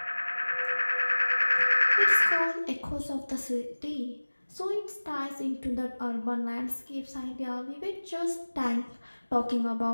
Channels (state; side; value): inverted; both; correlation -1.00